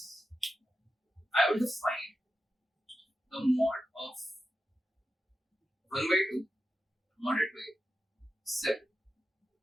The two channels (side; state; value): both; normal; correlation 0.91